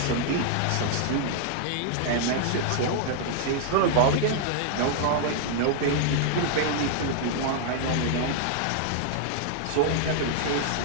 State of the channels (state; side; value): different; both; correlation -0.01